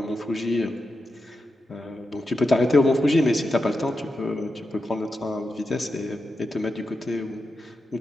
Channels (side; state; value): both; normal; correlation 0.88